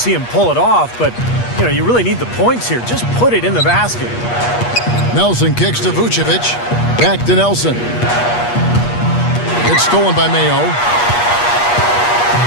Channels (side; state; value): right; late; 8.4 ms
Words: him pull it off, but, you really need the points here. Just put it in the basket. Nelson kicks to Vucevic. Back to Nelson. It's stolen by Mayo.